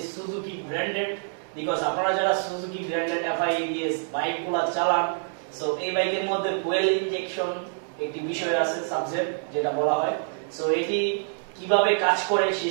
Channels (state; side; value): silent; left; 61 dB below the other